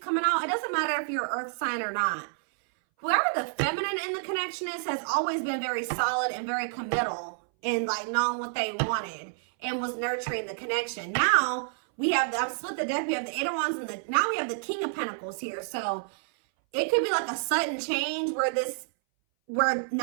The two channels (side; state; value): left; silent; 59 dB below the other